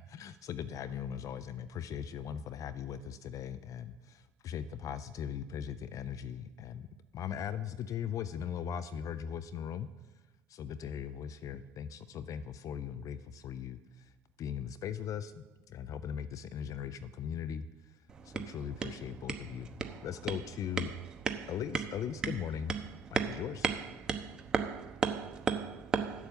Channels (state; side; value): normal; both; correlation 0.55